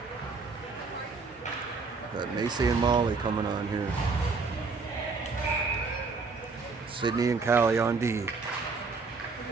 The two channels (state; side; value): quieter; left; 4.4 dB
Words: Got Macy and Molly coming on here. Sydney and Callie on D.